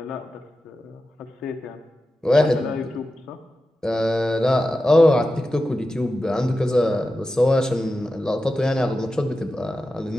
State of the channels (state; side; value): normal; both; correlation 0.92